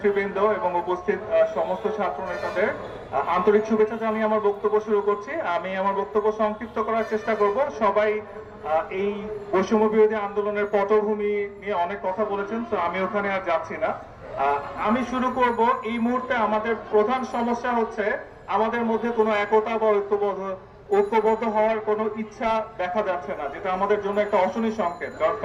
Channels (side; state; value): both; identical; correlation 1.00